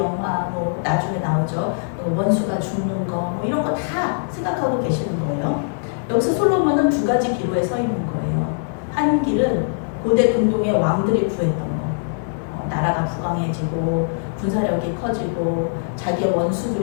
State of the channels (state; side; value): silent; right; 65 dB below the other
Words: 뭐 나중에 나오죠, 원수가 죽는 거, 뭐 이런 거 다 생각하고 계시는 거예요. 여기서 솔로몬은 두 가지 기로에 서 있는 거예요. 한 길은 고대 근동의 왕들이 구했던 거, 나라가 부강해지고 군사력이 커지고 자기의